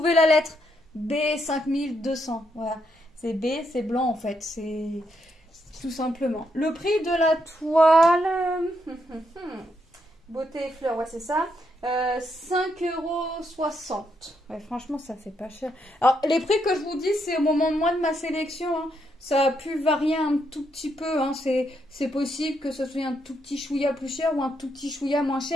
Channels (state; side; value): normal; both; correlation 0.78